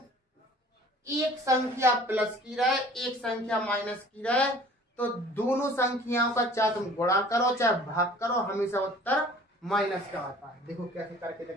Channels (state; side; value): normal; both; correlation 0.49